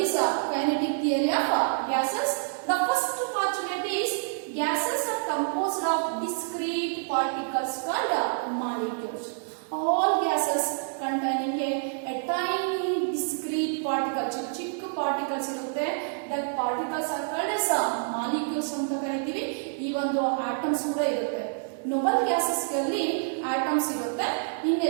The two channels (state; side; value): silent; left; 59 dB below the other